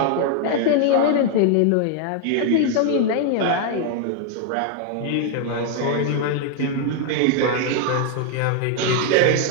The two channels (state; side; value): different; both; correlation 0.00